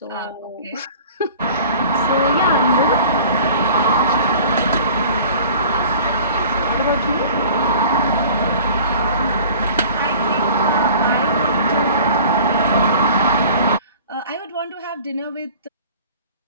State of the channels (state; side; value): inverted; both; correlation -0.45